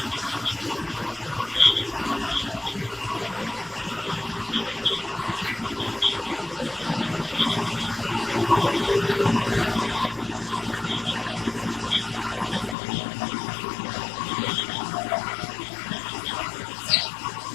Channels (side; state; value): right; drops out; at 12.8 s